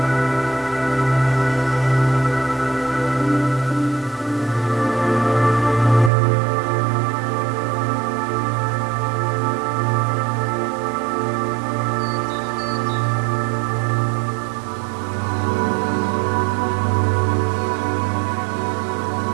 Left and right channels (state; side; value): drops out; left; at 6.1 s